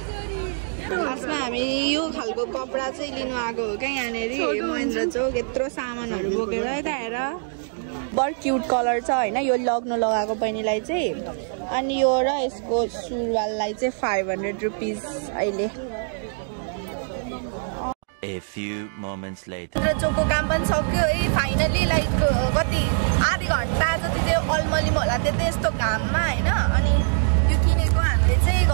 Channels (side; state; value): left; silent; digital silence